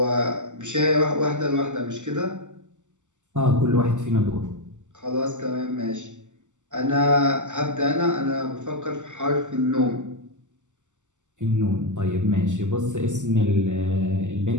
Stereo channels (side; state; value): left; late; 0.85 ms